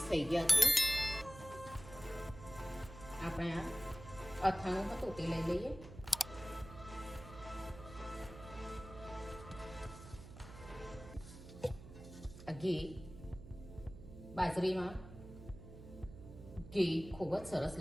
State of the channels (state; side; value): noise; right; hum, 14 dB below the sound